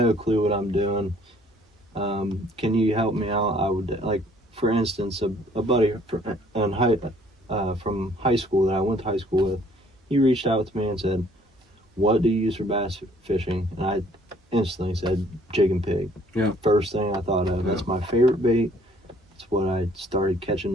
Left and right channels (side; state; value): both; normal; correlation 0.60